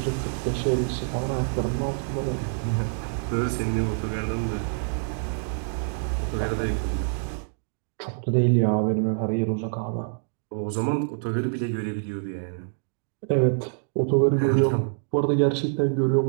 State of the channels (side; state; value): left; silent; digital silence